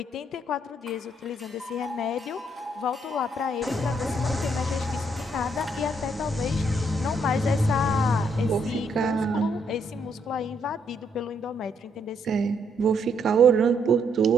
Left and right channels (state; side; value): normal; both; correlation 0.72